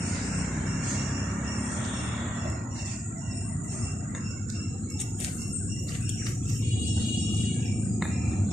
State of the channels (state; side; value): normal; both; correlation 0.85